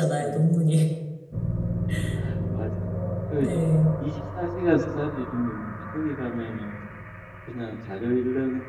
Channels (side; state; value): both; identical; correlation 1.00